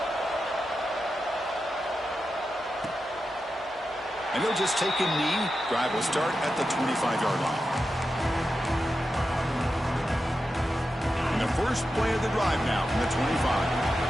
And they'll just take a knee. Drive will start at the 25-yard line. And the first play of the drive now from the 25.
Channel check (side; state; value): both; normal; correlation 0.90